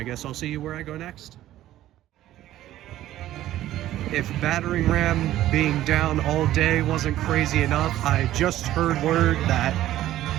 guess I'll see you where I go next. If battering ram being down all day wasn't crazy enough, I just heard word that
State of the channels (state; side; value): quieter; left; 13.8 dB